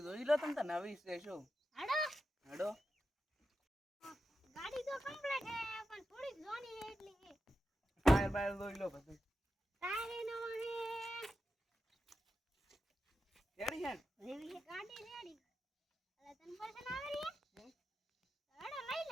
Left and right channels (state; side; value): normal; both; correlation 0.90